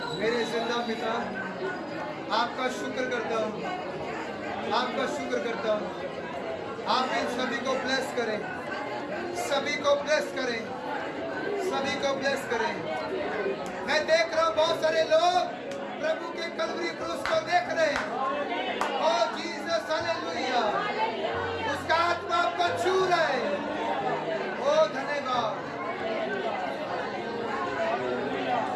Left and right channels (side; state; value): both; identical; correlation 1.00